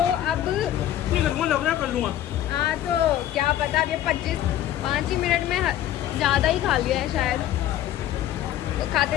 अब कर लूंगा। हाँ तो क्या पता, अब ये 5 ही मिनट में ज़्यादा ही खा लिया है शायद। तो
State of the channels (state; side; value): quieter; right; 12.3 dB